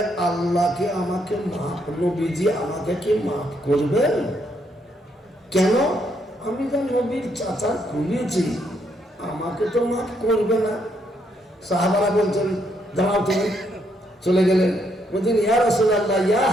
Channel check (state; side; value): normal; both; correlation 0.74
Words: আল্লাহকে আমাকে মাফ, নবীজি আমাকে কি মাফ করবেন? কেন? আমি তো নবীর চাচা খুলেছি, আমাকে তো মাফ করবে না। সাহাবারা বলছেন দাঁড়াও, তুমি চলে গেলেন। বলছেন ইয়া রাসূলুল্লাহ, ইয়া